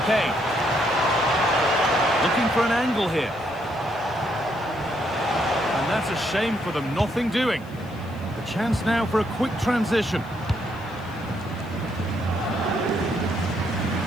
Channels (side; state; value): left; noise; hiss, 28 dB below the sound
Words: Kane. Looking for an angle here. And that's a shame for them, nothing doing. The chance now for a quick transition.